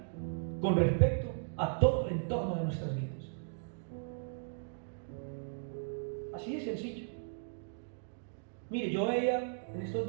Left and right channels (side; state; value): left; silent; digital silence